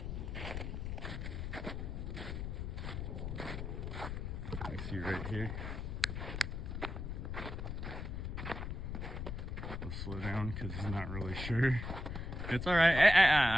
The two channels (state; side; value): noise; left; rumble, 5 dB below the sound